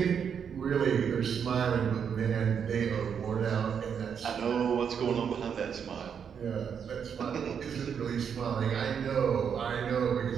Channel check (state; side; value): quieter; left; 7.4 dB